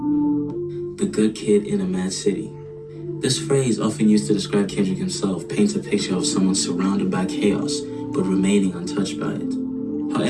The good kid in a mad city. This phrase, often used to describe Kendrick himself, paints a picture of someone surrounded by chaos, but remaining untouched by it.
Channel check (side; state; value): both; identical; correlation 1.00